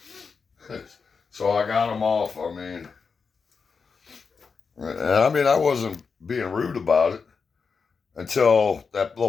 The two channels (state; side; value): quieter; right; 5.3 dB